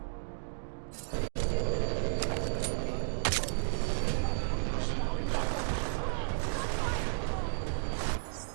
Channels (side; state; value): left; silent; digital silence